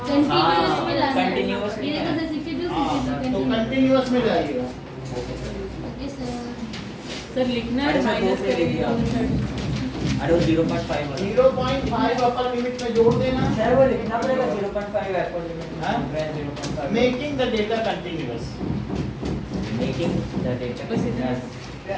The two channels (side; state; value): both; identical; correlation 1.00